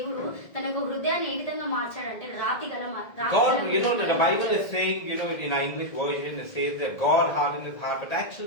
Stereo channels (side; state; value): right; late; 1.7 ms